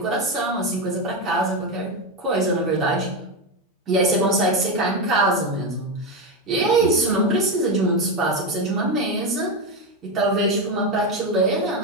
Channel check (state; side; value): normal; both; correlation 0.12